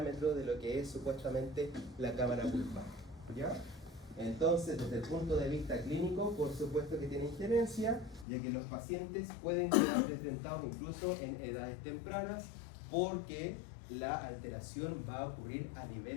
de lo que es supuestamente la cámara pulpar, ¿ya? Entonces, desde el punto de vista clínico, por supuesto que tiene injerencia, ya que los pacientes pueden quedar desdentados incluso en edades tempranas, porque la alteración va a ocurrir a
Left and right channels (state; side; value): drops out; right; at 8.2 s